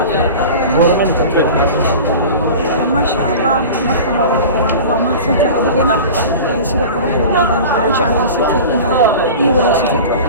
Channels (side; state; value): both; inverted; correlation -0.35